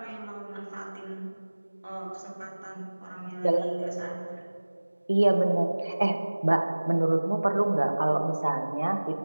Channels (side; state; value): both; inverted; correlation -1.00